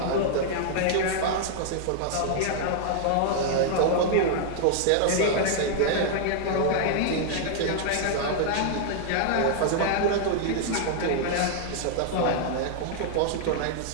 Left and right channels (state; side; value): different; both; correlation -0.01